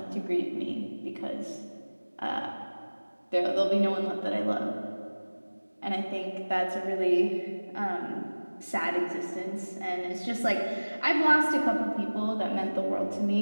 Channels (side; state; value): both; inverted; correlation -1.00